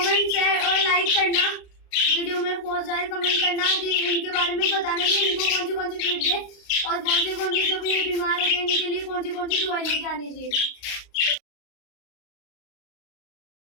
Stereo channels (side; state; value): right; late; 35 ms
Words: शेयर और लाइक करना, वीडियो में बहुत सारे कमेंट करना कि इनके बारे में बताना कि इनको कौन सी फीड दे और कौन से जो भी बीमार हो गए इनके लिए कौन सी दवाई लेके आनी चाहिए।